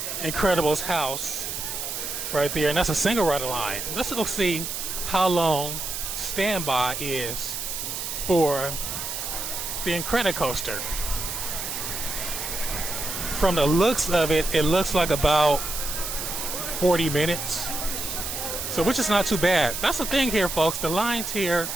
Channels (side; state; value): right; noise; hiss, 4 dB below the sound